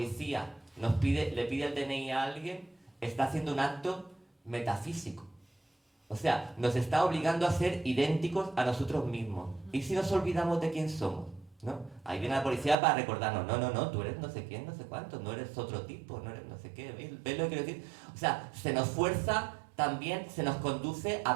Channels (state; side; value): drops out; left; at 12.8 s